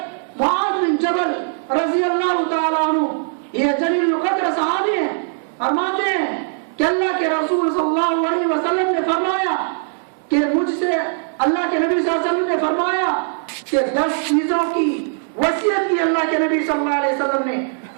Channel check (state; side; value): silent; left; digital silence